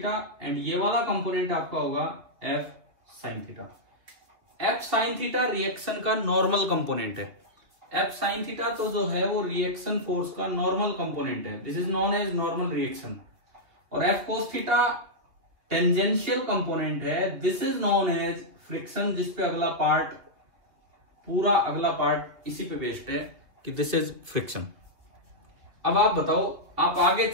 एंड ये वाला कंपोनेंट आपका होगा F sine theta. F sine theta reaction का नॉर्मल कंपोनेंट है। एफ साइन थीटा तो जो है वो रिएक्शन फोर्स का नॉर्मल कंपोनेंट है, this is known as normal reaction. और F cos theta tangential component है, this is known as friction, जिसपे अगला पार्ट, पूरा अगला पार्ट इसी पे बेस्ड है कि दिस इज फ्रिक्शन। अब आप बताओ, आप आगे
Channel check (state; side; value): late; left; 2.7 ms